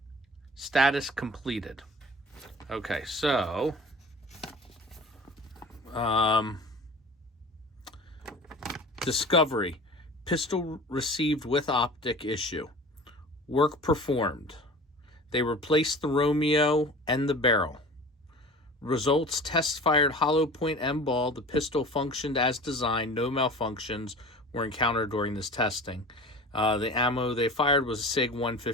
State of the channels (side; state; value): both; normal; correlation 0.39